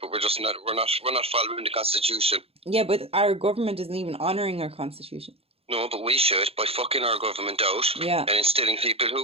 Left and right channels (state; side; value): late; left; 0.28 ms